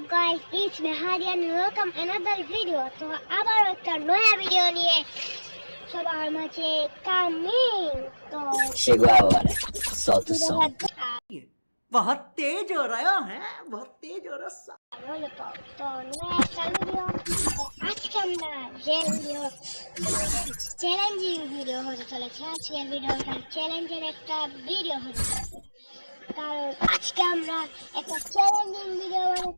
guys, it's me Hadi and welcome another video. তো আবার একটা নয়া ভিডিও নিয়ে সবার মাঝে কামিং। তো शिगवावर साउथ सॉन्ग बहुत तेज हो रहा है, बहुत तेज हो रहा है। তো নয়া একটা ভিডিও। আজকে আমরা যে ভিডিও চ্যালেঞ্জিং ভিডিও হতে চলেছে। আজকের ভিডিওটা চ্যালেঞ্জের একটা ভিডিও হতে চলেছে, কারণ আজকে আমরা একটা চ্যালেঞ্জিং ভিডিও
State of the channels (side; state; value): both; inverted; correlation -1.00